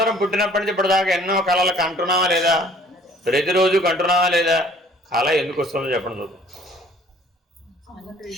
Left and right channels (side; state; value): both; normal; correlation 0.55